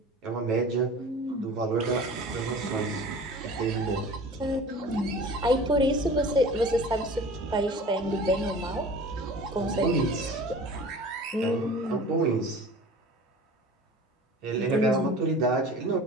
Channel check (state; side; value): normal; both; correlation 0.41